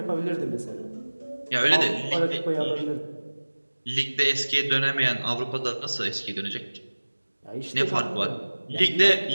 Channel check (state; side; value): inverted; both; correlation -1.00